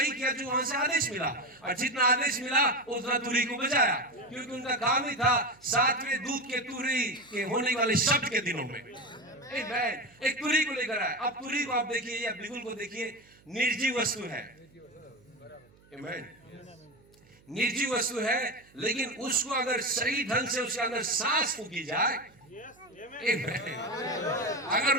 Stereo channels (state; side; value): noise; right; hum, 29 dB below the sound